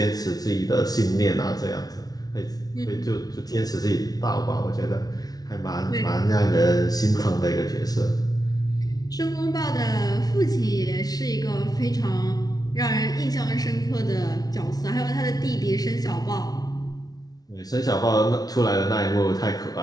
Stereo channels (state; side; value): late; right; 0.19 ms